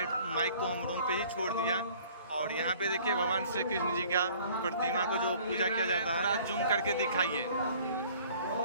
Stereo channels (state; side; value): inverted; both; correlation -0.53